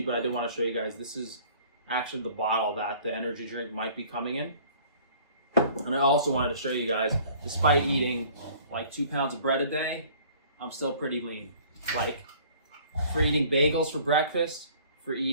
but I did want to show you guys, this is actually the bottle that the energy drink might be coming in. And I also wanted to show you guys, despite eating like 2 pounds of bread a day, I'm still pretty lean. Like, for eating bagels for breakfast, for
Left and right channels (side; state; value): both; inverted; correlation -0.52